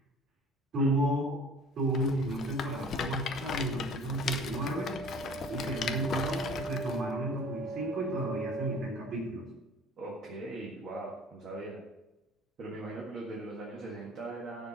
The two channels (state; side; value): normal; both; correlation 0.47